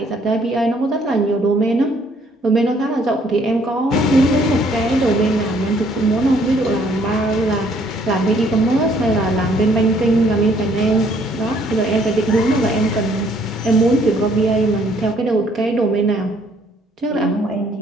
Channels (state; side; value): normal; both; correlation 0.64